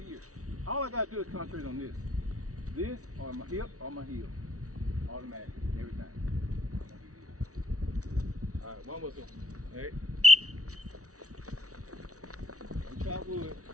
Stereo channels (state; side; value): late; left; 0.66 ms